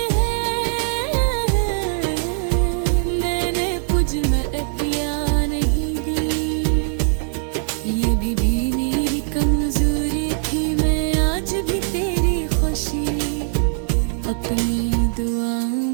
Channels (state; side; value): silent; left; digital silence